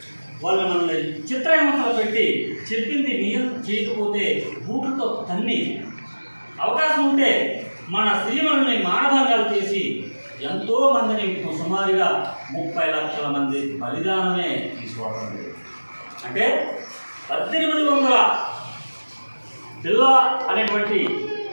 వాళ్ళు మనల్ని చిత్రహింసలు పెట్టి చెప్పింది నియం చేయకపోతే బూట్లతో తన్ని, అవకాశం ఉంటే మన స్త్రీలను మానభంగాలు చేసి ఎంతో మందిని సుమారుగా 30 లక్షల మంది బలిదానమే తీసుకోవడం. అంటే 1800 పిల్ల అనేటువంటి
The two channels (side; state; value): both; inverted; correlation -1.00